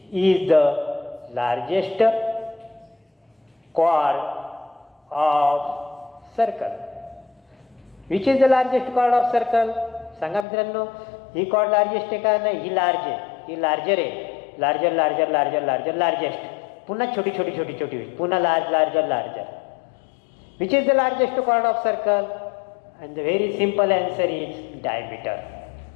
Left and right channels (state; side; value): drops out; right; at 10.5 s